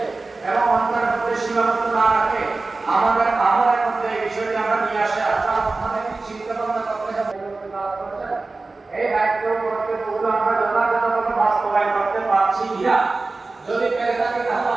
এবং অন্তরের মধ্যে সীমাবদ্ধ না রাখে আমাদের আমলের মধ্যে এই বিষয়টি আমরা নিয়ে আসে আমাদের চিন্তা ভাবনা করতে হবে। এই দায়িত্ব করতে পুরো আমরা যথাযথভাবে বাস্তবায়ন করতে পারছি কিনা, যদি পেরে থাকি তাহলে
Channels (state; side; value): quieter; left; 3.5 dB